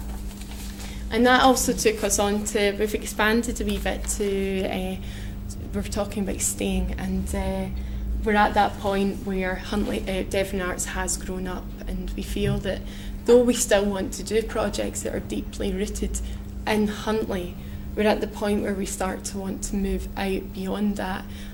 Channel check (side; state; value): both; identical; correlation 1.00